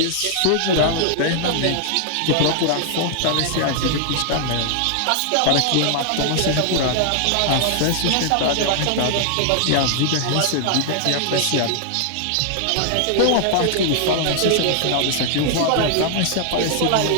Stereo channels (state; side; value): different; both; correlation 0.00